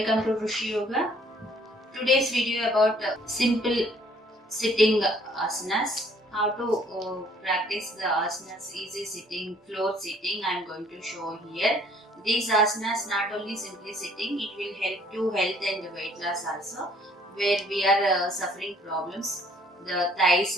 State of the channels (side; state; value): both; normal; correlation 0.60